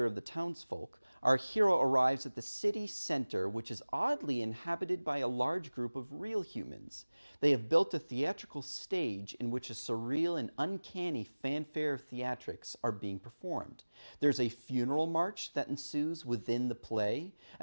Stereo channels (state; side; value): inverted; both; correlation -1.00